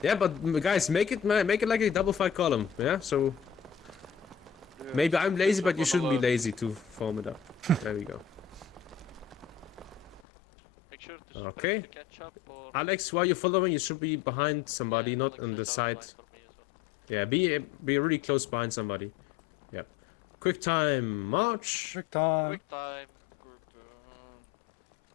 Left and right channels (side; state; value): right; drops out; at 10.2 s